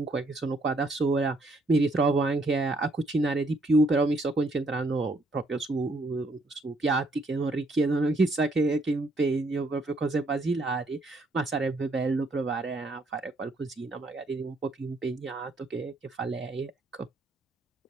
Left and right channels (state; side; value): normal; both; correlation 0.70